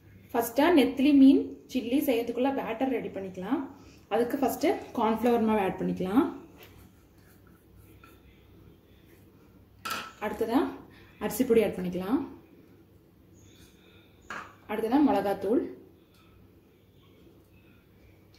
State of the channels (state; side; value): identical; both; correlation 1.00